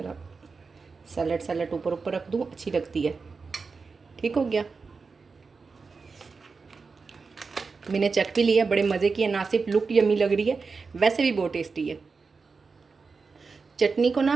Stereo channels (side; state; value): left; quieter; 4.6 dB